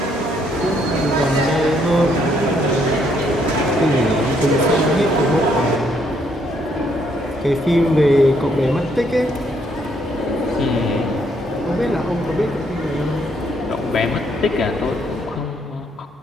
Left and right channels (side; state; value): both; normal; correlation 0.70